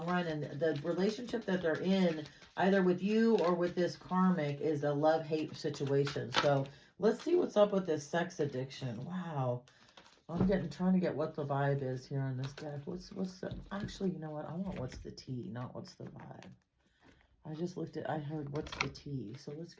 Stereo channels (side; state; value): both; identical; correlation 1.00